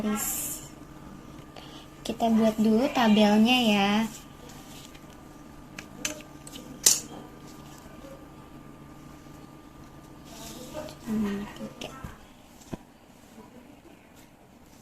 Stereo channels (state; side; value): identical; both; correlation 1.00